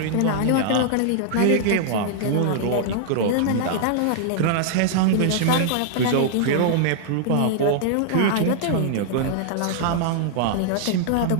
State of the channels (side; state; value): both; different; correlation -0.01